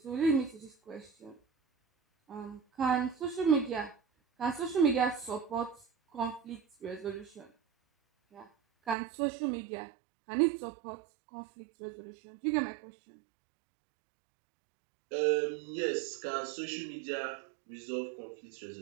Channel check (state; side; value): drops out; left; at 9.0 s